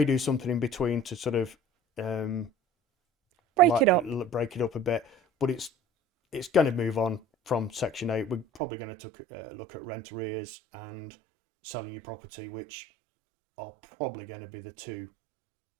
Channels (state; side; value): drops out; left; at 8.6 s